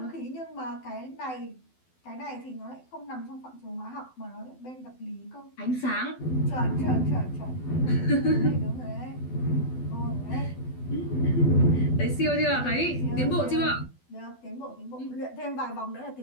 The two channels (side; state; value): right; late; 12 ms